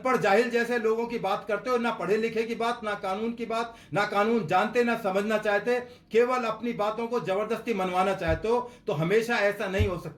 जाहिल जैसे लोगों की बात करते हो, ना पढ़े लिखे की बात, ना कानून की बात, ना कानून जानते, ना समझना चाहते, केवल अपनी बातों को जबरदस्ती मनवाना चाहते हो। तो हमेशा ऐसा नहीं हो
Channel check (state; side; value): identical; both; correlation 1.00